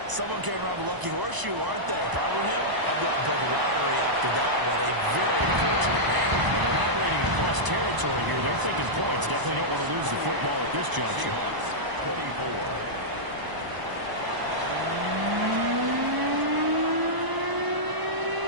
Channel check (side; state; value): left; late; 1.0 ms